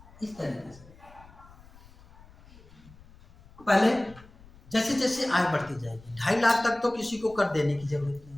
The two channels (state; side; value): noise; left; rumble, 23 dB below the sound